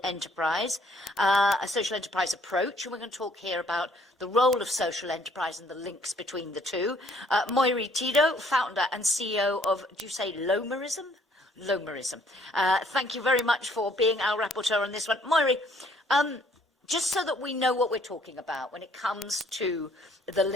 enterprise approach. And we're going to talk here about the role of social enterprise and the links between the two. Moiri Tito, founder and CEO of, do you say Lomerism? Lomerism. Thank you very much for being our rapporteur on this one. Moiri, just so that we know what we're talking about when it comes to the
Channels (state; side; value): normal; both; correlation 0.62